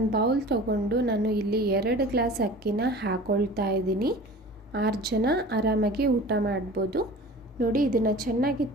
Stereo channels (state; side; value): normal; both; correlation 0.40